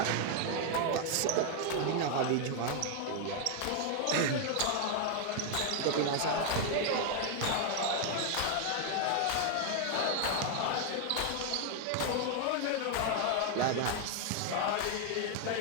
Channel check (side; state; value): both; different; correlation 0.00